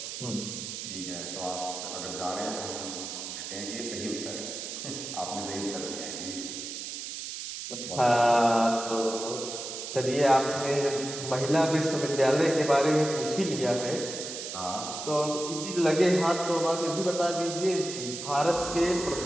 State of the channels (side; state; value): right; noise; hiss, 7 dB below the sound